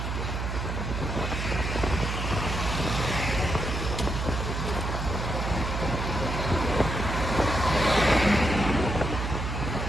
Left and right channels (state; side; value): noise; right; hum, 3 dB below the sound